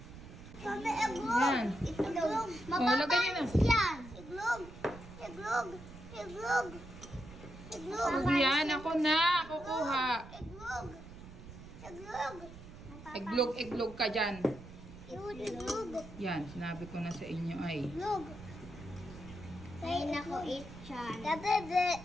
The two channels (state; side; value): noise; right; rumble, 15 dB below the sound